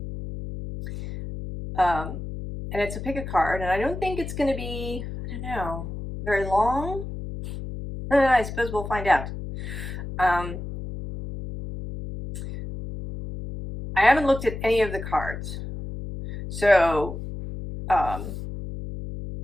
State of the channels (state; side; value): noise; left; hum, 8 dB below the sound